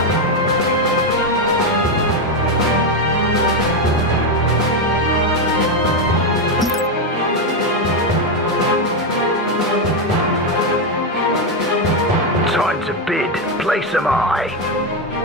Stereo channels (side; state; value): both; normal; correlation 0.07